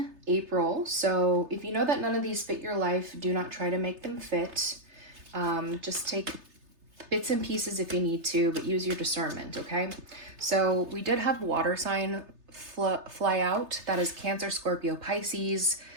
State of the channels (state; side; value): late; left; 3.3 ms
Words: April. So if you know that none of these fit your life, do not try to make them fit. Just take bits and pieces if you need to, but use your discernment, okay? So we did have water sign fly out. That is Cancer, Scorpio, Pisces.